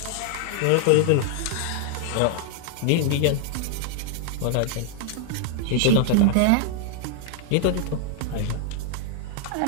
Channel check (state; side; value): different; both; correlation -0.01